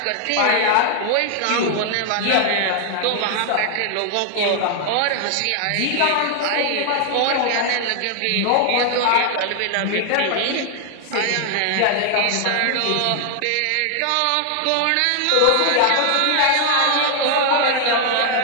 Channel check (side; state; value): both; different; correlation 0.00